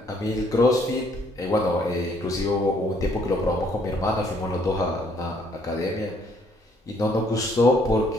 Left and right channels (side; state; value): both; normal; correlation 0.66